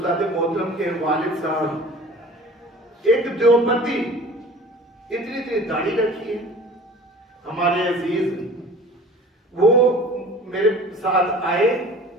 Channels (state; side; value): normal; both; correlation 0.44